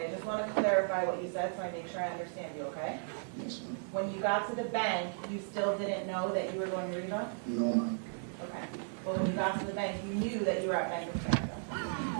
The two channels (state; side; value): silent; left; 54 dB below the other